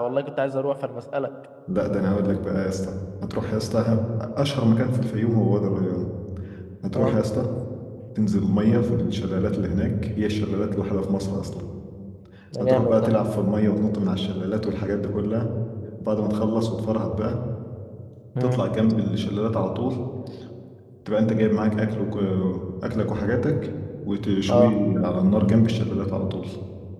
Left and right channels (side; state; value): both; identical; correlation 1.00